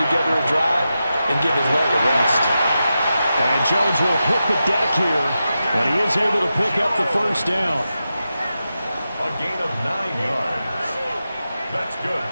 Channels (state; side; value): inverted; both; correlation -0.90